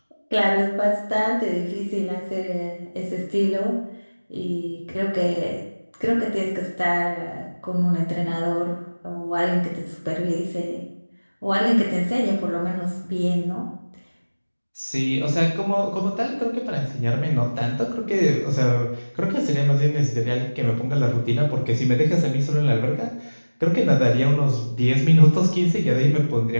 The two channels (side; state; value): both; inverted; correlation -1.00